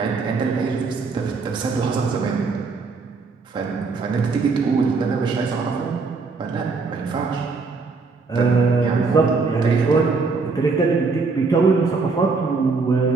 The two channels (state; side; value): quieter; left; 4.3 dB